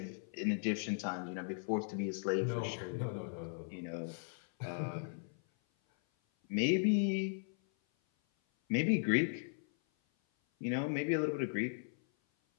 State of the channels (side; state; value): right; silent; 53 dB below the other